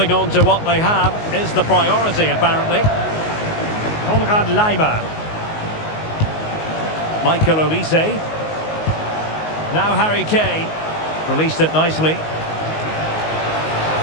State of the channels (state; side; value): late; right; 19 ms